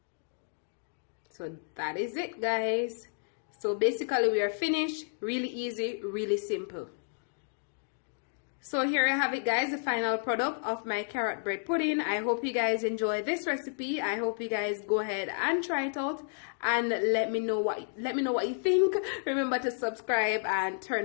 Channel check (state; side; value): silent; right; digital silence